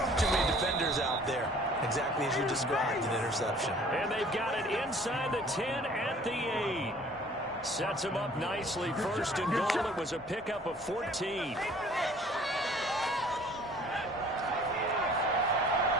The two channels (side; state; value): both; normal; correlation 0.52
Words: Too many defenders out there. Exactly as you described, an interception. And they've got it inside the 10 at the 8. Sets him up nicely. 1st and goal. It was a pickup of 14. Now